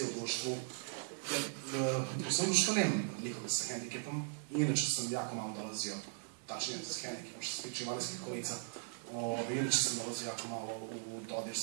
u društvu. Jer u svom društvu nemam nikoga sa hendikepom. Inače sam jako malo dolazio, tačnije sa hendikepom što se tiče invalidskih kolica. Inače sam dolazio jako malo u dodir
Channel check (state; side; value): silent; left; 52 dB below the other